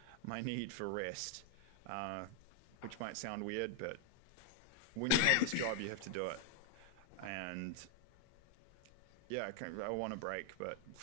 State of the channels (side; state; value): both; different; correlation 0.00